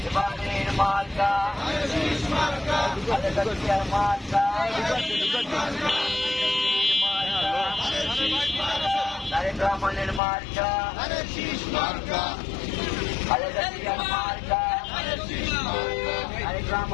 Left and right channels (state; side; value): drops out; right; at 10.2 s